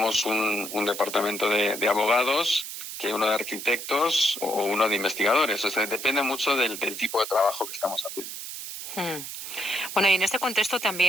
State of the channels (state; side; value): noise; right; hiss, 8 dB below the sound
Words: un departamento de abogados que uno de arquitectos o uno de investigadores. O sea, depende mucho del tipo de trabajo que estamos haciendo. Bueno, y en este contexto